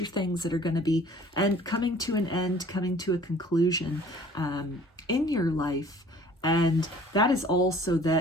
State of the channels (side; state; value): both; normal; correlation 0.51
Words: things that are going to be coming to an end, coming to a conclusion in your life. And that is also